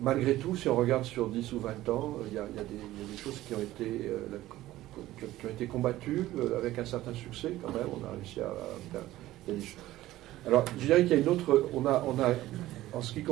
Malgré tout, si on regarde sur 10 ou 20 ans, il y a des choses qui ont été combattues avec un certain succès quand même. On a réussi à faire. Il y a des choses. Alors, je dirais qu'il y a une autre. On a, en ce qui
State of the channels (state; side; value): quieter; left; 15.7 dB